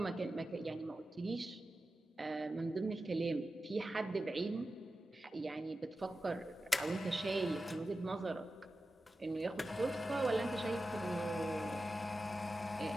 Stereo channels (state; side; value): normal; both; correlation 0.93